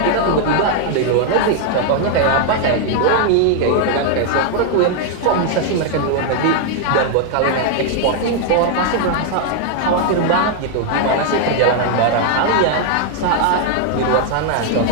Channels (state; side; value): different; both; correlation 0.00